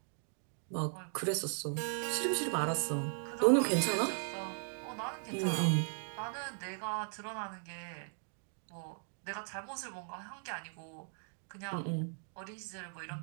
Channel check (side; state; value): left; silent; 52 dB below the other